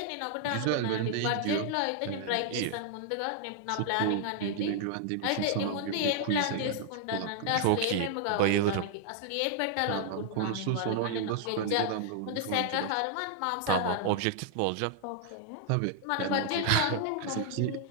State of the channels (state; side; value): different; both; correlation 0.00